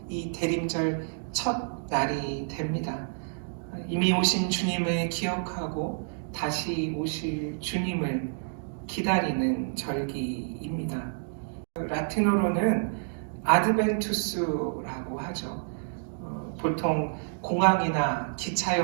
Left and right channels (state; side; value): silent; left; digital silence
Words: 이 대림절 첫 날이 됩니다. 이미 오신 주님을 기억하고 다시 오실 주님을 기다리는 절기입니다. 라틴어로는 아드벤투스라고 하죠. 보통 공항이나